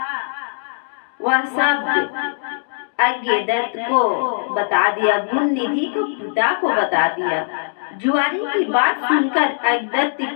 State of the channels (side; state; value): right; silent; digital silence